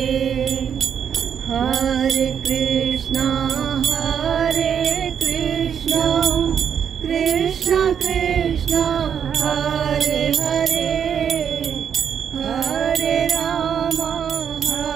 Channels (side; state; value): left; quieter; 8.0 dB